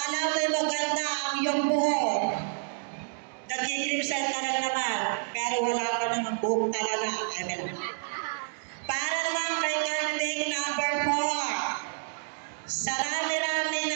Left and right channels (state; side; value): silent; left; 56 dB below the other